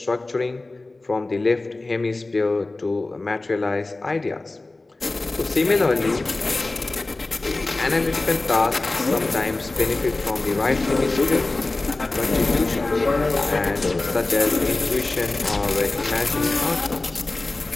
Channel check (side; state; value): right; quieter; 3.1 dB